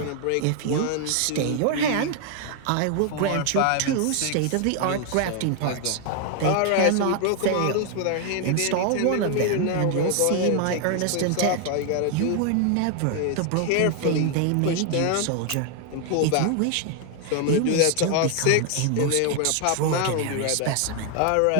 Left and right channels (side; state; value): both; different; correlation 0.00